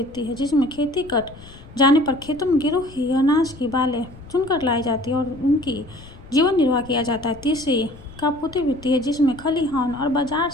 है, जिसमें खेती कट जाने पर खेतों में गिरी हुई अनाज की बालें चुनकर लाई जाती है और उनकी जीवन निर्वाह किया जाता है। तीसरी कापूती वृत्ति है, जिसमें खलिहान और बाजार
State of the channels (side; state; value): left; noise; rumble, 19 dB below the sound